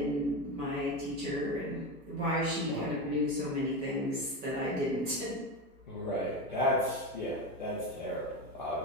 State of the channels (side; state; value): both; normal; correlation 0.19